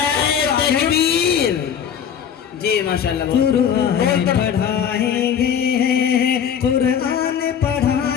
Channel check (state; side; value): quieter; right; 8.3 dB